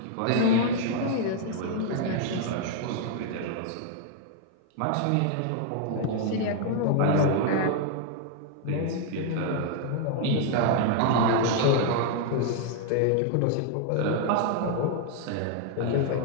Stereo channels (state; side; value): different; both; correlation 0.00